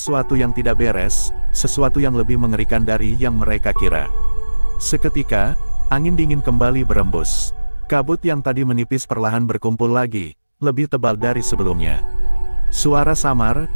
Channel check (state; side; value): inverted; both; correlation -1.00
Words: yang tidak beres, sesuatu yang lebih mengerikan dari yang mereka kira. Seketika, angin dingin kembali berembus. Kabut yang tadi menipis perlahan berkumpul lagi, lebih tebal dari sebelumnya. Suara samar,